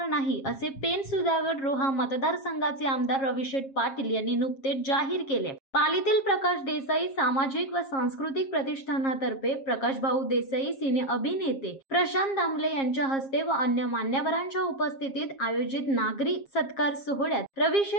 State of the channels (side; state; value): right; late; 7.4 ms